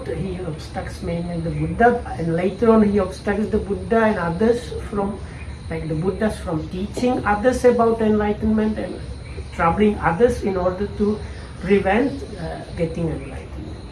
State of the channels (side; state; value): both; identical; correlation 1.00